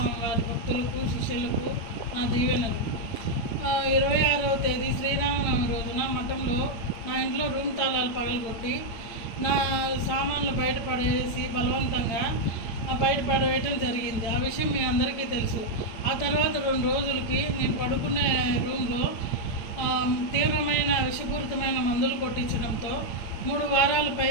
వారి భక్తులకు శిష్యులకు నా దీవెనలు. 26వ తేదీ శ్రీరామనవమి రోజున మఠంలో నా ఇంట్లో రూమ్ తాళాలు పగలగొట్టి నా సామాన్లు బయటపడేసి బలవంతంగా బయటపడేయటం జరిగింది. ఆ విషయం మీ అందరికీ తెలుసు. ఆ తర్వాత 2 రోజులకి నేను పడుకునే రూమ్లో తీవ్రమైన విషపూరితమైన మందులు కొట్టించడంతో 3 వారాలు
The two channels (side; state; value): right; late; 9.1 ms